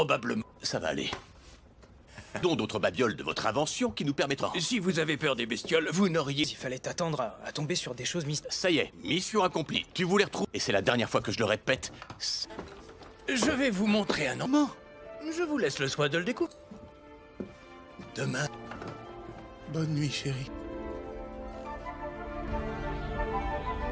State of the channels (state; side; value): identical; both; correlation 1.00